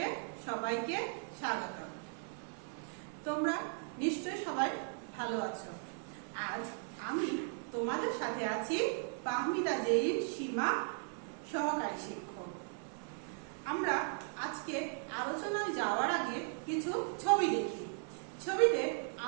সবাইকে স্বাগত। তোমরা নিশ্চয় সবাই ভালো আছো। আজ আমি তোমাদের সাথে আছি ফাহমিদা জেরিন সীমা, সহকারী শিক্ষক। আমরা আজকে আলোচনায় যাওয়ার আগে কিছু ছবি দেখি। ছবিতে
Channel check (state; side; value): silent; left; 53 dB below the other